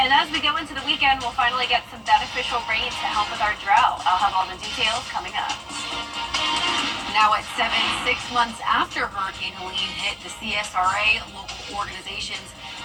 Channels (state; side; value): identical; both; correlation 1.00